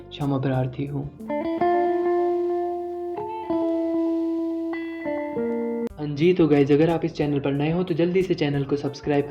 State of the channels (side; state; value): both; identical; correlation 1.00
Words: क्षमा प्रार्थी हूँ। हाँ जी, तो गाइज अगर आप इस चैनल पर नए हो तो जल्दी से चैनल को सब्सक्राइब